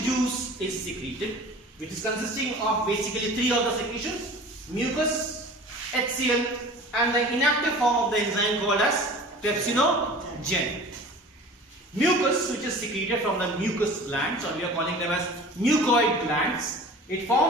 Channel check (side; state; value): both; normal; correlation 0.41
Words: juice is secreted, which is consisting of basically three of the secretions: mucus, HCl, and the inactive form of the enzyme called as pepsinogen. Mucus, which is secreted from the mucus glands, or we are calling them as mucoid glands, it